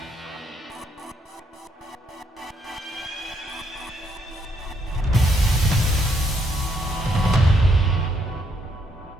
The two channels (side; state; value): both; normal; correlation 0.73